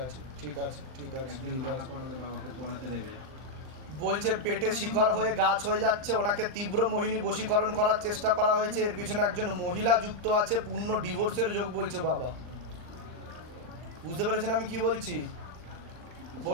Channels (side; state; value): left; late; 39 ms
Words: আছে ঠিক আছে ঠিক আছে ঠিক আছে। বলছে পেটে শিকড় হয়ে গাছ হয়ে যাচ্ছে, ওনাকে তীব্র মোহিনী বশীকরণ করার চেষ্টা করা হয়েছে, এর পিছনে একজন মহিলা যুক্ত আছে, পূর্ণ ডিভোর্সের যোগ বলছে বাবা। বুঝতে পেরেছেন আমি কি বলছি?